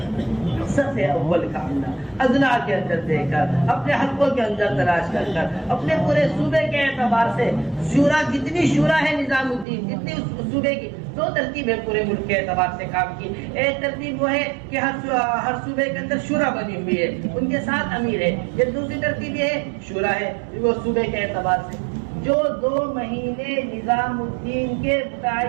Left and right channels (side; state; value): left; drops out; at 9.7 s